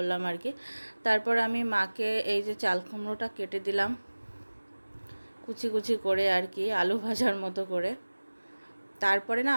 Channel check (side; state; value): both; inverted; correlation -1.00